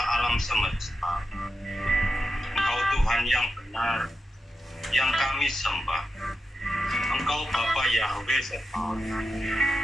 semesta. Engkau Tuhan yang benar, yang kami sembah. Engkau Bapa Yahweh Sebaot.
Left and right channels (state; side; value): normal; both; correlation 0.88